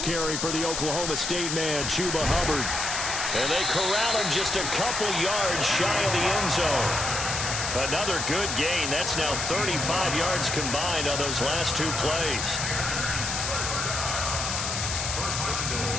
carry for the Oklahoma State man, Chuba Hubbard. And they corral him just a couple yards shy of the end zone. Another good gain. That's now 35 yards combined on those last 2 plays. First and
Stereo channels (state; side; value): noise; left; hiss, 2 dB below the sound